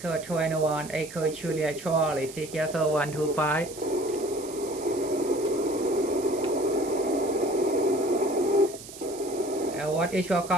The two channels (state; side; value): noise; right; hiss, 15 dB below the sound